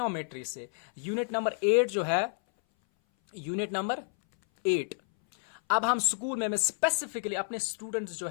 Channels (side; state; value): right; silent; 58 dB below the other